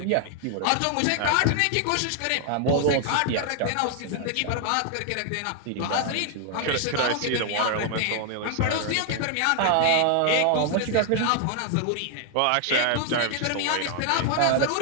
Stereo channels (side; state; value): both; different; correlation 0.00